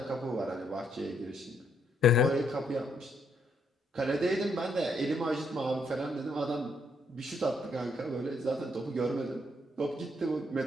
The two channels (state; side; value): normal; both; correlation 0.73